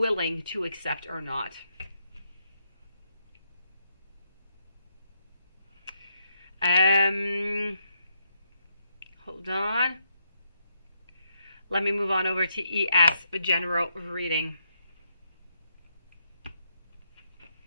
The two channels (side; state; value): both; inverted; correlation -0.79